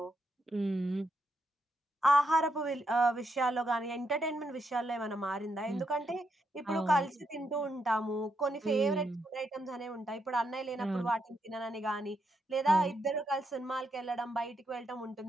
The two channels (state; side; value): normal; both; correlation 0.80